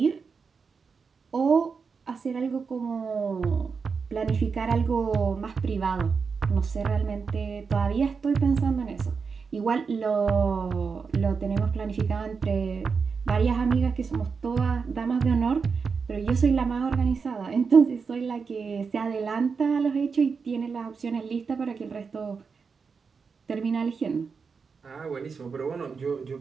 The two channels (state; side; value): quieter; left; 5.4 dB